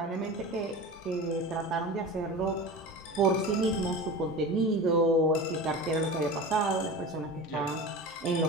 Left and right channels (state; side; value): normal; both; correlation 0.31